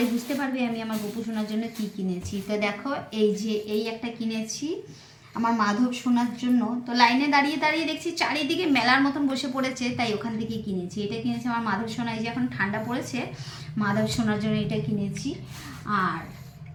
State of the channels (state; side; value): identical; both; correlation 1.00